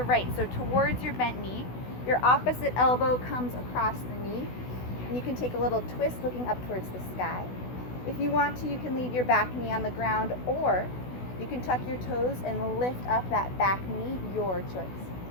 right. So towards your bent knee, your opposite elbow comes across the knee, and you can take a little twist looking up towards the sky. If you want to, you can leave your back knee on the ground, or you can tuck your toes and lift up that back knee, your choice.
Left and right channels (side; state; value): right; late; 16 ms